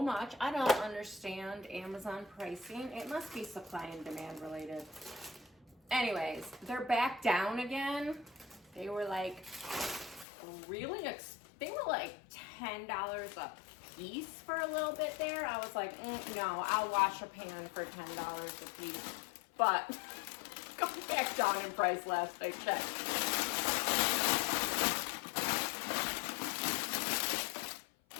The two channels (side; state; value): right; drops out; at 10.2 s